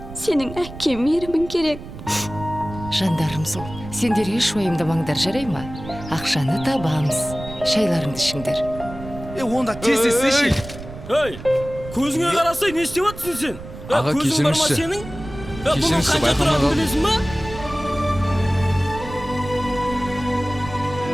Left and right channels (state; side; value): noise; right; rumble, 13 dB below the sound